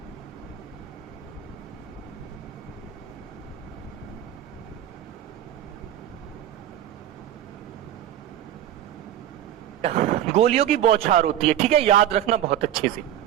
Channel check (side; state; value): left; quieter; 11.5 dB